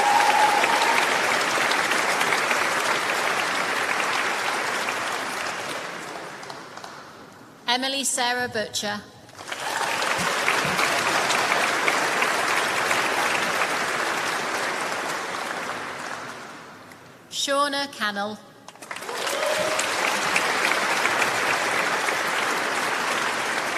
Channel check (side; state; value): both; identical; correlation 1.00